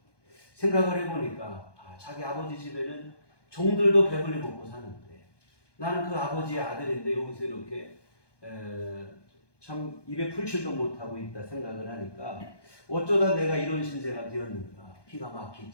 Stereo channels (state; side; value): late; right; 1.2 ms